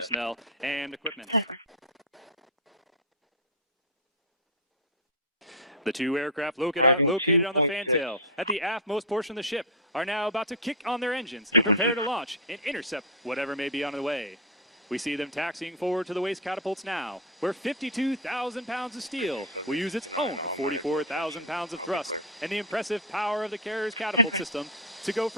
and equipment. The 2 aircraft located on the fantail at the aftmost portion of the ship are now about to kick on their engines and prepare to launch and intercept whatever may be on the way. We see them taxiing forward to the waste catapults now, where 52,000 pounds of steel will use its own 44,000 pounds of thrust and the impressive power of the carrier's catapult system to go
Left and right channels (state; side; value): normal; both; correlation 0.01